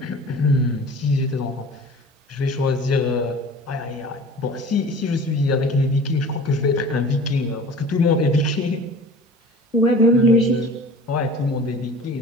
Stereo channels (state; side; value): normal; both; correlation 0.42